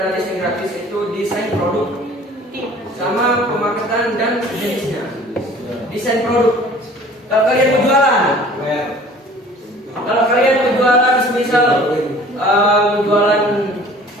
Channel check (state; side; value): normal; both; correlation 0.49